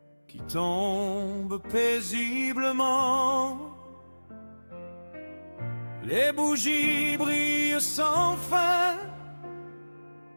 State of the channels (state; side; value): inverted; both; correlation -1.00